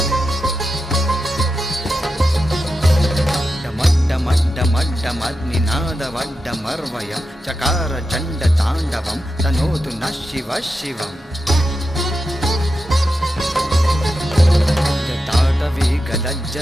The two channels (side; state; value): both; normal; correlation 0.89